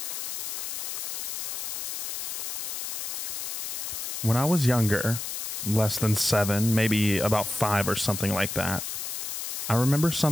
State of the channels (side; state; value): left; noise; hiss, 4 dB below the sound